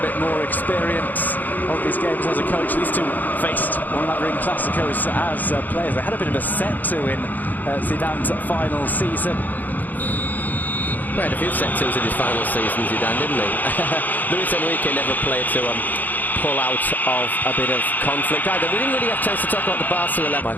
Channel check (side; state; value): right; late; 0.084 ms